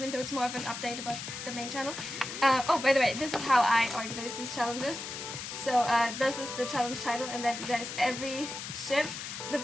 though it's more of an update about the main channel. Oh, by the way, this is how I organize these challenges. So this is the challenge title, and then there's every ship. The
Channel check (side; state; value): left; noise; hiss, 8 dB below the sound